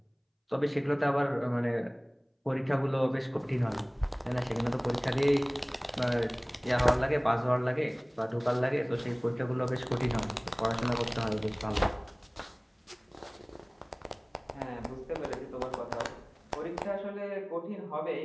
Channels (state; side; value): identical; both; correlation 1.00